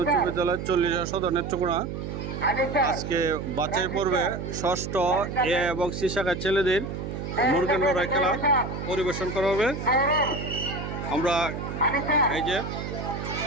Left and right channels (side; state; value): right; noise; hum, 6 dB below the sound